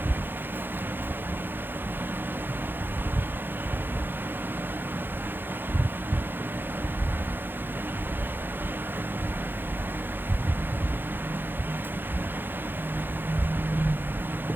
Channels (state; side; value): late; left; 0.098 ms